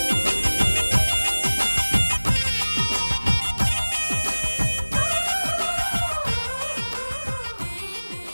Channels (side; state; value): both; inverted; correlation -1.00